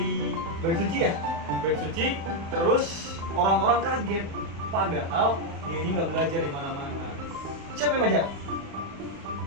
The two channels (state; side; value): late; left; 36 ms